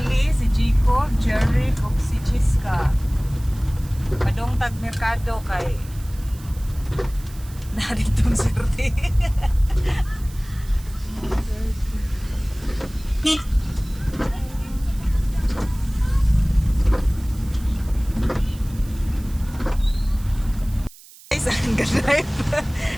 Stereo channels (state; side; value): noise; right; hiss, 21 dB below the sound